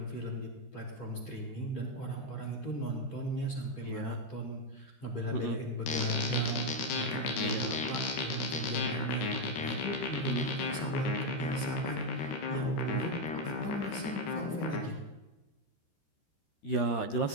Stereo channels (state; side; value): late; right; 13 ms